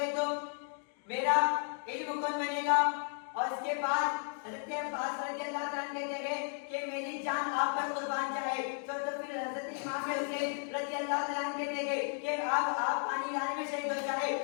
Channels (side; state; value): right; silent; 55 dB below the other